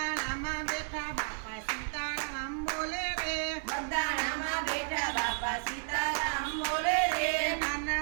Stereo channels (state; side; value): silent; left; 56 dB below the other